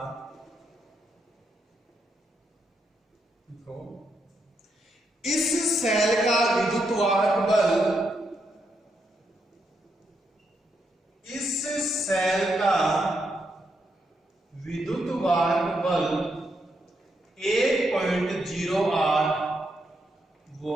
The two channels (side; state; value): both; normal; correlation 0.80